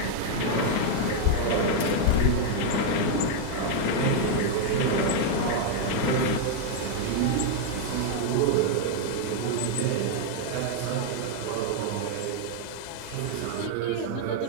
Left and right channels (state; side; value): different; both; correlation 0.00